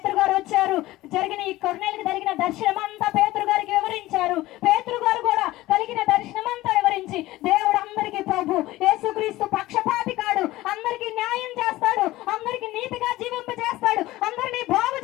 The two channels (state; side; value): quieter; right; 17.4 dB